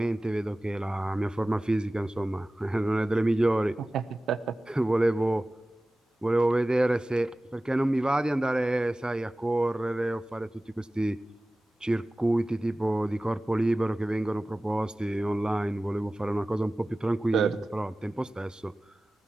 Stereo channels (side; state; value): both; normal; correlation 0.97